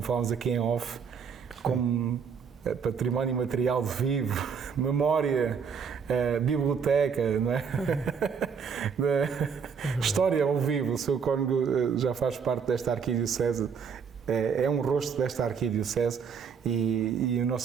falámos aqui em off, como património material vivo, memória, biblioteca, não é? História ao vivo. O Sr. Cônego já faz parte desta arquidiocese, é um rosto desta arquidiocese e o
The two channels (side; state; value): left; quieter; 6.3 dB